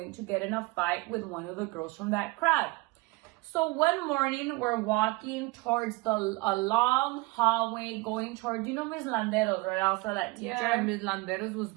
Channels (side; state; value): left; quieter; 23.6 dB